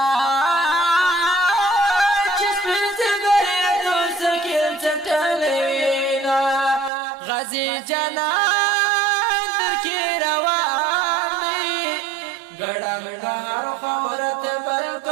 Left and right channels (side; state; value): left; drops out; at 6.9 s